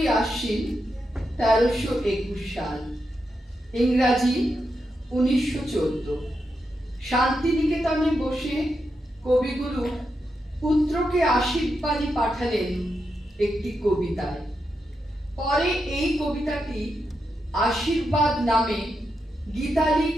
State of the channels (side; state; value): both; normal; correlation 0.85